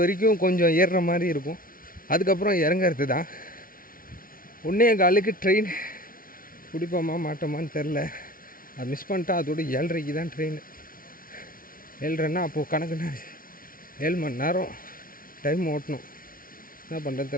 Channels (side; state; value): right; late; 0.42 ms